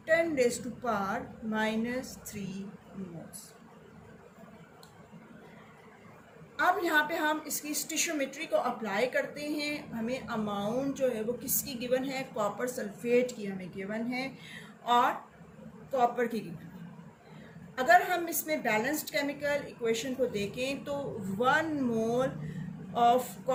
10 raised to power minus 3 moles. अब यहाँ पे हम इसकी स्टिशियोमेट्री को apply करते हैं। हमें amount जो है वो किसकी गिवन है, कॉपर सल्फेट की हमें गिवन है और कॉपर की गिवन है। अगर हम इसमें बैलेंस्ड केमिकल इक्वेशन को देखें तो 1 मोल ऑफ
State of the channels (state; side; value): identical; both; correlation 1.00